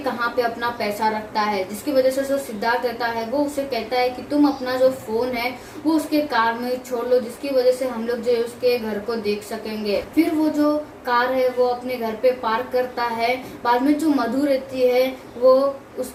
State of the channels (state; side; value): identical; both; correlation 1.00